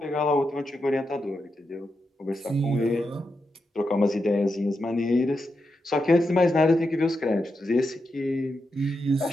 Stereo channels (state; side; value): normal; both; correlation 0.86